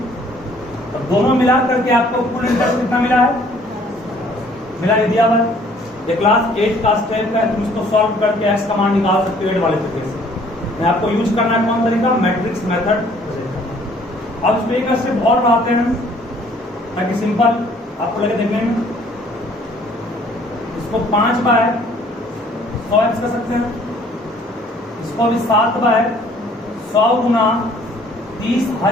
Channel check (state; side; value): normal; both; correlation 0.58